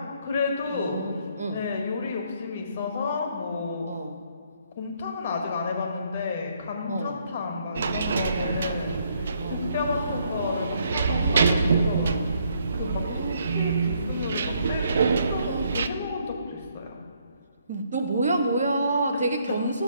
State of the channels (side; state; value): both; inverted; correlation -0.70